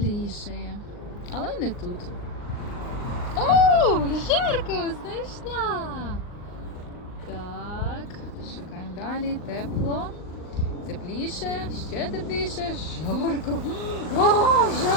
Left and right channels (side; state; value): right; late; 39 ms